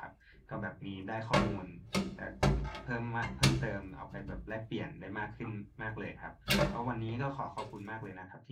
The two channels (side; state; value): both; identical; correlation 1.00